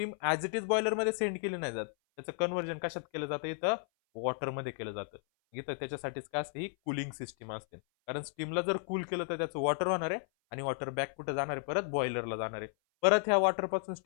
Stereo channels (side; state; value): right; silent; 55 dB below the other